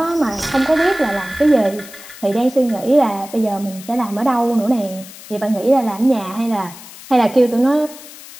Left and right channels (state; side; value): noise; left; hiss, 17 dB below the sound